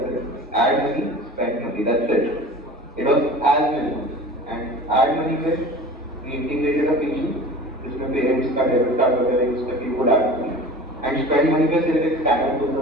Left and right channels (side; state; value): both; normal; correlation 0.39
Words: थे add money spend money that's it it was as minimum and add money में वी इंटीग्रेटेड अ फीचर जिसमें पेरेंट्स का डेबिट कार्ड वगैरह यूज करके वो add money and spend money पे सिर्फ एक स्कैनर